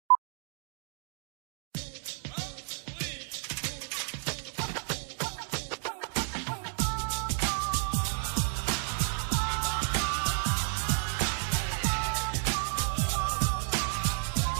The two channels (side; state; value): left; silent; 57 dB below the other